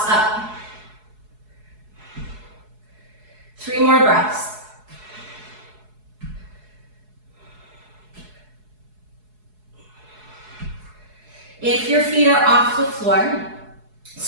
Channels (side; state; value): left; late; 4.7 ms